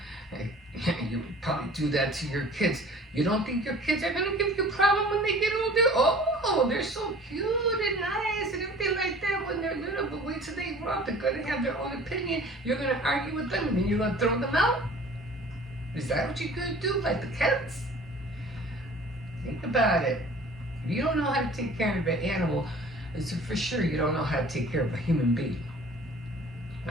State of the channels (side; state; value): both; normal; correlation 0.47